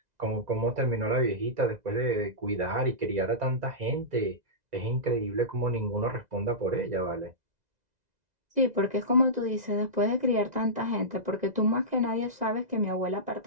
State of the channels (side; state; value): left; late; 2.0 ms